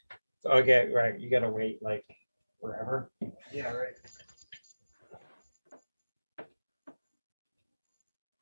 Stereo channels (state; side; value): inverted; both; correlation -1.00